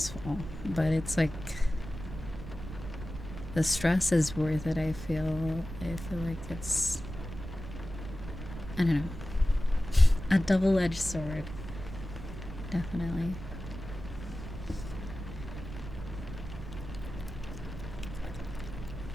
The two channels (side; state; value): right; noise; rumble, 10 dB below the sound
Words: but it's like, the stress is worth it. I feel like it's, I don't know, a double-edged sword. Definitely.